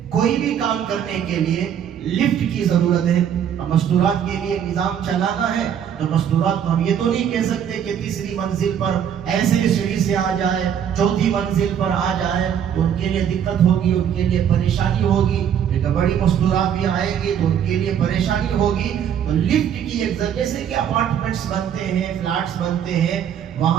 کوئی بھی کام کرنے کے لیے لفٹ کی ضرورت ہے۔ مستورات کے لیے نظام چلانا ہے تو مستورات کو ہم یہ تو نہیں کہہ سکتے کہ تیسری منزل پر ایسے سیڑھی سے آ جائے، چوتھی منزل پر آ جائے، تو ان کے لیے دقت ہوگی، ان کے لیے پریشانی ہوگی، لیکن بڑی مستورات بھی آئیں گی تو ان کے لیے پریشانی ہوگی۔ تو لفٹ کی ایک ضرورت، جیسے کہ اپارٹمنٹس بنتے ہیں، فلیٹس بنتے ہیں،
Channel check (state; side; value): quieter; left; 8.9 dB